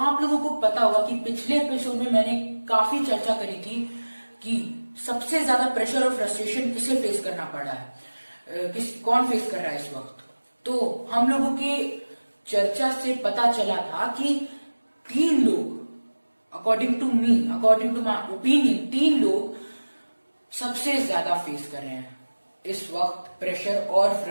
लोगों को पता होगा कि पिछले एपिसोड में मैंने काफी चर्चा करी थी कि सबसे ज्यादा प्रेशर और फ्रस्ट्रेशन किसे फेस करना पड़ रहा है, कौन फेस कर रहा है इस वक्त। तो हम लोगों के चर्चा से पता चला था कि 3 लोग, अकॉर्डिंग टू माई ओपिनियन, 3 लोग सबसे ज्यादा फेस कर रहे हैं इस वक्त प्रेशर और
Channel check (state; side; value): inverted; both; correlation -1.00